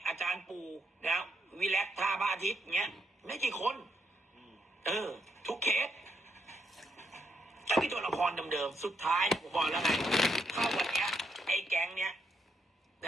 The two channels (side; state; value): both; normal; correlation 0.78